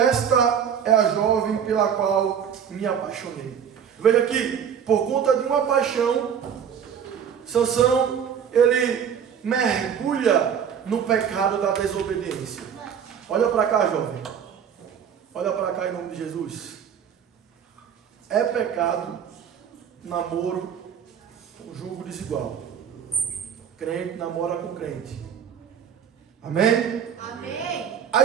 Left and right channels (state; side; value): quieter; left; 8.0 dB